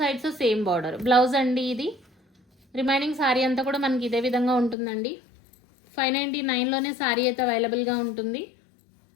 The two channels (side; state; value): right; drops out; at 4.8 s